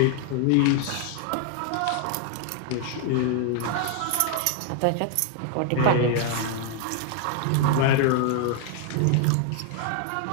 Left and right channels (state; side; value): different; both; correlation 0.00